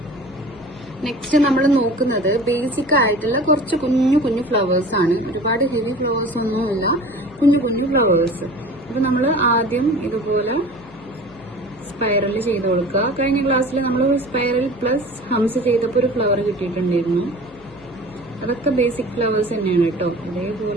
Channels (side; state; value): left; noise; hum, 23 dB below the sound